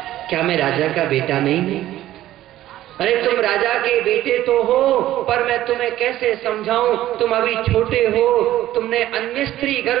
क्या मैं राजा का बेटा नहीं हूं? अरे तुम राजा के बेटे तो हो, पर मैं तुम्हें कैसे समझाऊं, तुम अभी छोटे हो, तुमने अन्य स्त्री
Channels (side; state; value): left; quieter; 14.0 dB